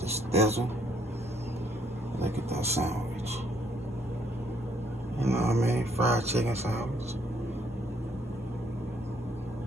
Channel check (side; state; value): both; normal; correlation 0.68